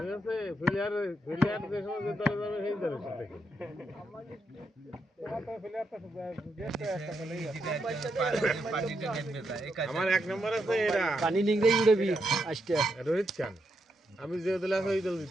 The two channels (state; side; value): normal; both; correlation 0.82